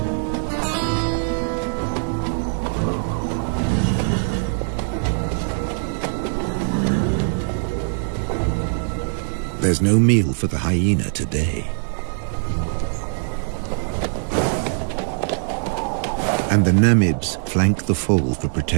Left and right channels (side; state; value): left; silent; digital silence